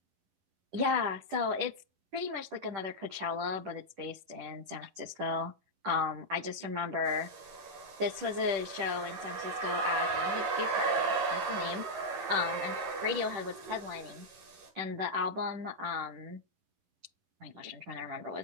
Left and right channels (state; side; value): late; left; 10 ms